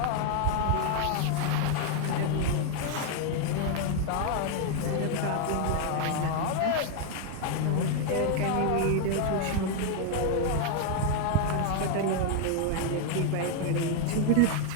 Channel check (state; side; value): different; both; correlation 0.00